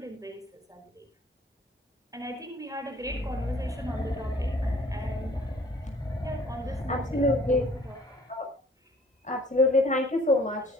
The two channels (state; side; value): normal; both; correlation 0.55